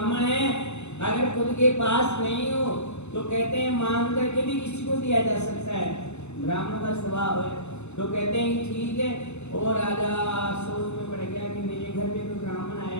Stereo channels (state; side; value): late; right; 0.82 ms